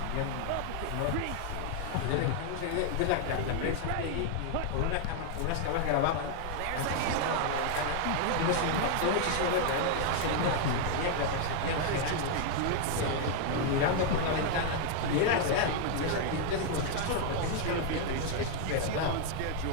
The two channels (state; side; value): different; both; correlation 0.00